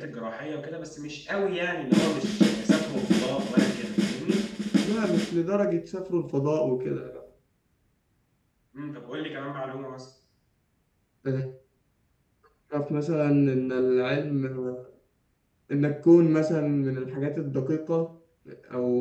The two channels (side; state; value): both; identical; correlation 1.00